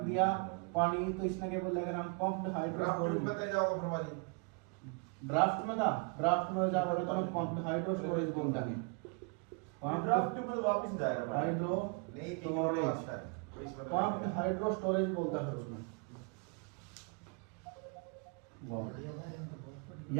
दिया पानी तो इसने क्या बोलेगा हम पंप्ड हाइड्रो स्टोरेज ड्राफ्ट में जाओगे तो हम पंप्ड हाइड्रो स्टोरेज बोल देंगे ड्राफ्ट ट्यूब में वापस जाएगा हाइड्रो पंप्ड हाइड्रो स्टोरेज बोलता है उसमें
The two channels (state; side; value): quieter; left; 35.6 dB